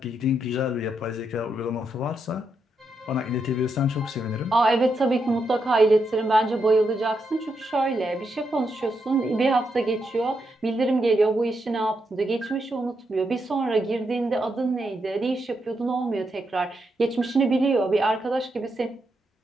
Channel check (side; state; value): both; normal; correlation 0.82